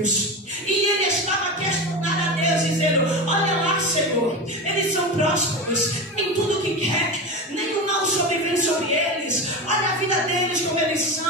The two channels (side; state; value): both; normal; correlation 0.23